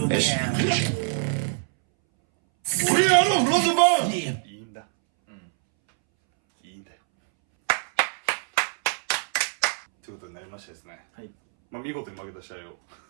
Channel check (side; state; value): left; silent; 62 dB below the other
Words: there. We are the Rosenborg! いいんだ。いいんだよ。ということになりましてですね。はい。まあ、見事に負けた試合を